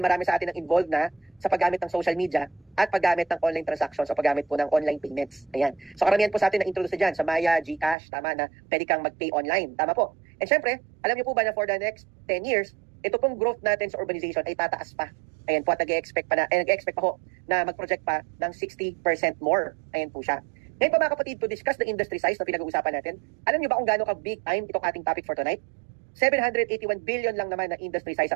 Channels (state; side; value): drops out; left; at 8.0 s